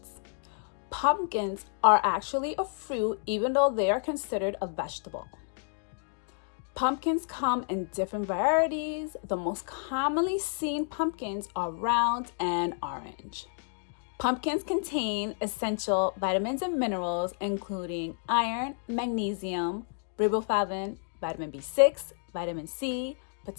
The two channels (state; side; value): silent; right; digital silence